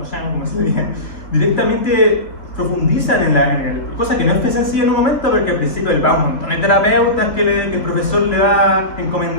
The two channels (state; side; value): late; right; 2.5 ms